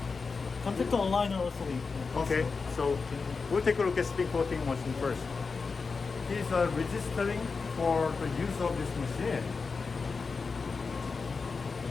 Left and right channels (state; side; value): quieter; right; 4.7 dB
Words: Contact aligner also. Okay, so we'll take a look at spin coating machine first. He's registering for the use of this machine.